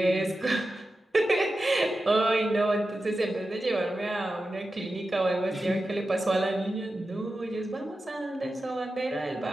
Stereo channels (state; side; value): normal; both; correlation 0.92